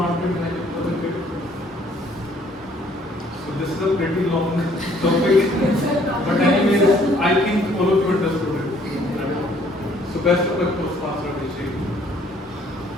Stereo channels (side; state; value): both; normal; correlation 0.62